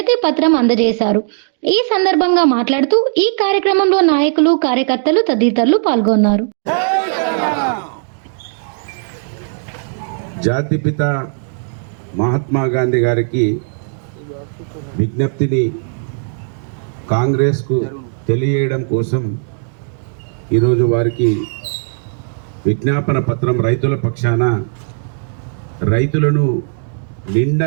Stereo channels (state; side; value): silent; left; digital silence